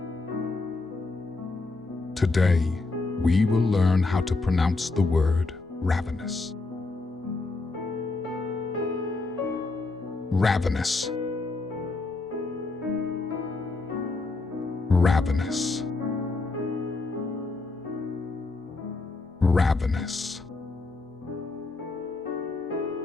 Today, we will learn how to pronounce the word ravenous. Ravenous. Ravenous. Ravenous.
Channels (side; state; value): right; quieter; 3.5 dB